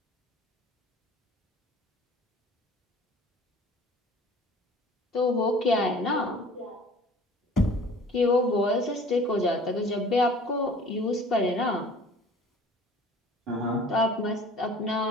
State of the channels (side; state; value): both; normal; correlation 0.48